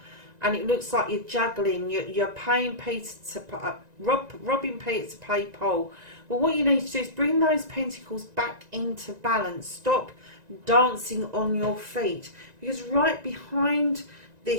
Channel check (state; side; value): late; left; 1.9 ms